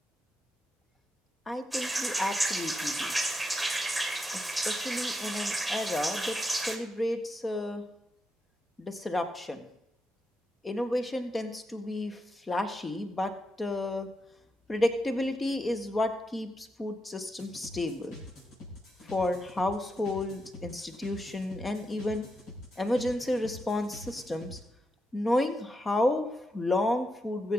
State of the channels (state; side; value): normal; both; correlation 0.85